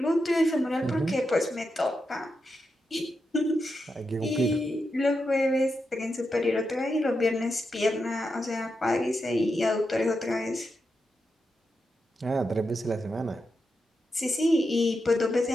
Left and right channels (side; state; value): both; normal; correlation 0.87